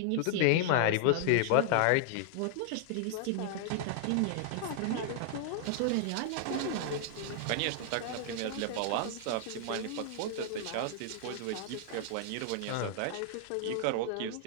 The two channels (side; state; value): both; different; correlation 0.00